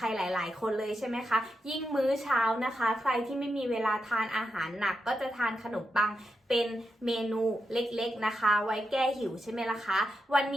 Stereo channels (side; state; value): both; normal; correlation 0.86